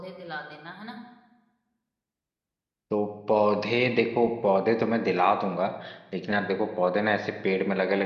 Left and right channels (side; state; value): both; identical; correlation 1.00